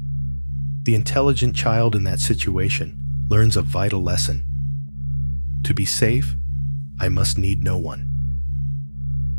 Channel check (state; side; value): inverted; both; correlation -1.00